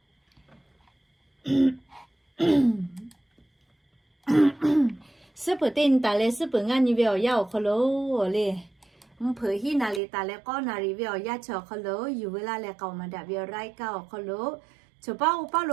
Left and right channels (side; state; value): left; drops out; at 10.0 s